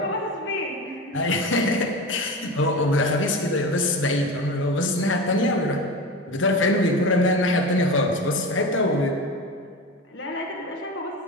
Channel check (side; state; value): both; normal; correlation 0.26